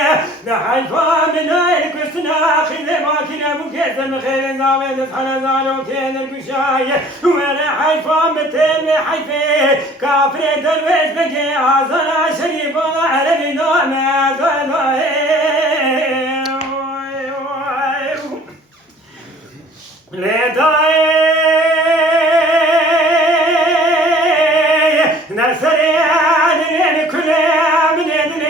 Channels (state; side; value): normal; both; correlation 0.51